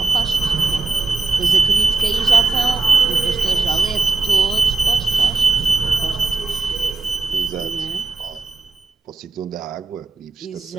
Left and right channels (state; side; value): quieter; left; 3.8 dB